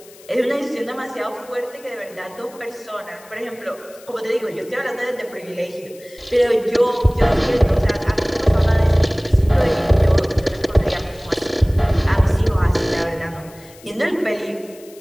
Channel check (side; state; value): left; noise; hiss, 23 dB below the sound